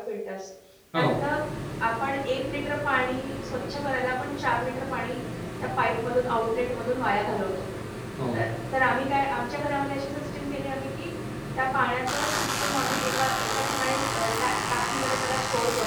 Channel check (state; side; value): identical; both; correlation 1.00